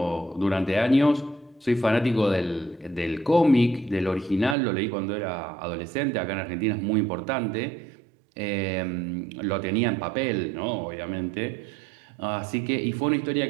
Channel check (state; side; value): drops out; left; at 4.5 s